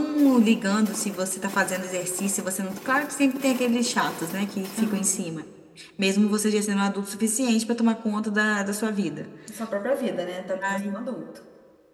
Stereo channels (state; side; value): identical; both; correlation 1.00